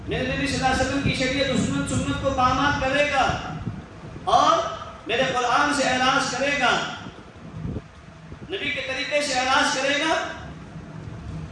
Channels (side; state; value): both; identical; correlation 1.00